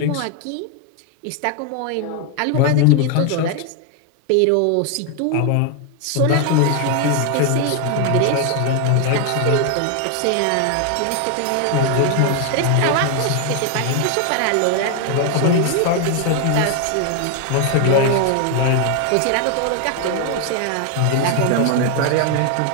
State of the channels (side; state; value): both; different; correlation 0.00